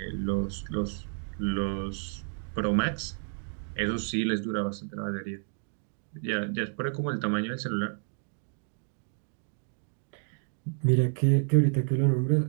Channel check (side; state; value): left; silent; 58 dB below the other